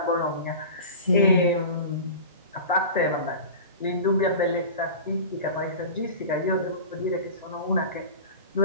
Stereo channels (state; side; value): inverted; both; correlation -0.33